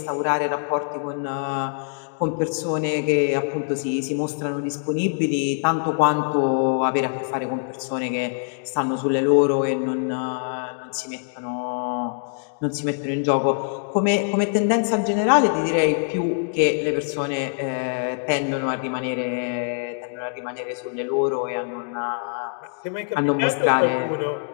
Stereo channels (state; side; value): silent; right; digital silence